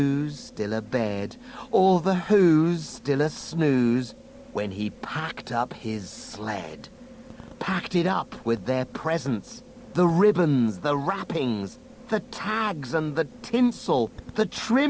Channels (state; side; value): identical; both; correlation 1.00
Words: still abed, all the Who's still a snooze, when he packed up his sled. Packed it up with their presents, the ribbons, the wrappings, the tags and the tinsel, the